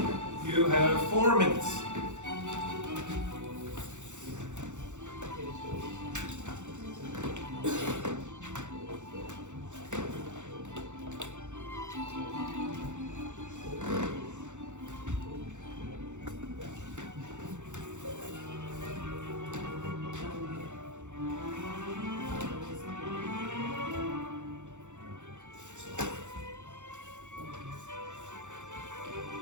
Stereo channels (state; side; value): late; left; 0.84 ms